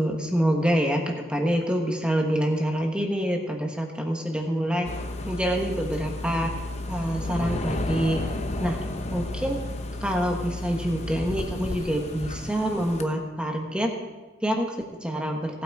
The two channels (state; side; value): normal; both; correlation 0.84